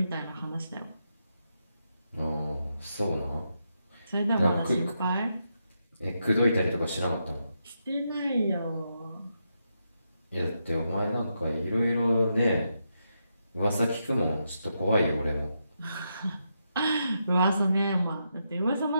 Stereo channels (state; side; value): inverted; both; correlation -0.83